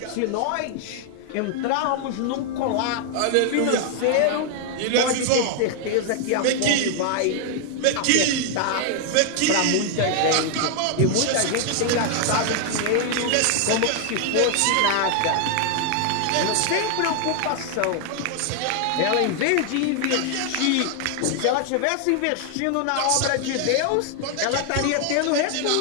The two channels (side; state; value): both; different; correlation 0.00